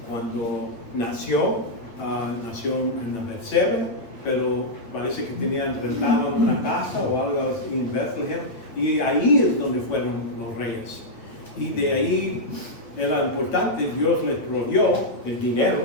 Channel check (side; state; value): right; late; 8.6 ms